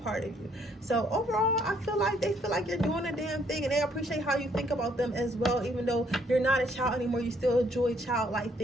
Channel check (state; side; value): normal; both; correlation 0.67